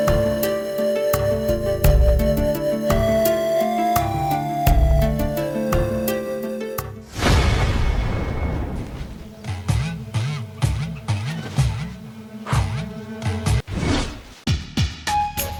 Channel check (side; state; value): both; identical; correlation 1.00